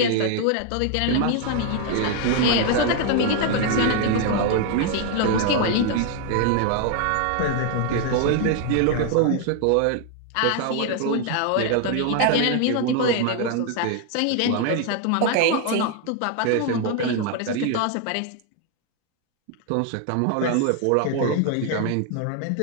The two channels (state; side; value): different; both; correlation 0.00